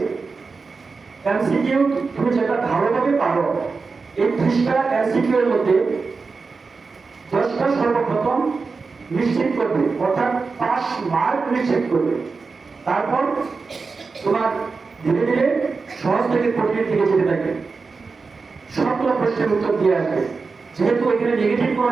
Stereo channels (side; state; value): left; quieter; 4.5 dB